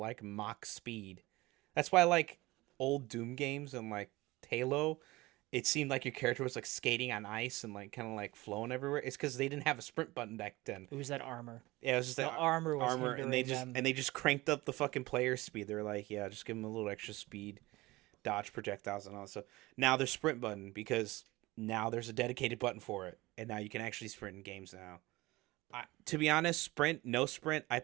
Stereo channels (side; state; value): left; quieter; 20.4 dB